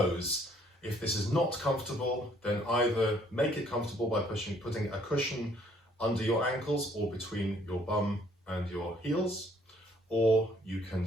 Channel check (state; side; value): normal; both; correlation 0.63